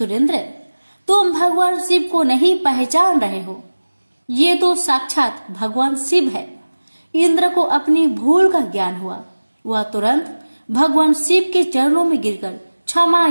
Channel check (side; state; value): both; inverted; correlation -1.00